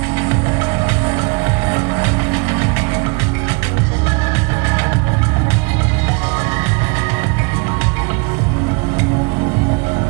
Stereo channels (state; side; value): quieter; left; 31.4 dB